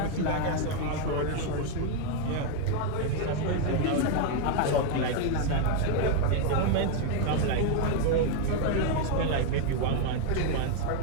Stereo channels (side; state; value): both; different; correlation 0.01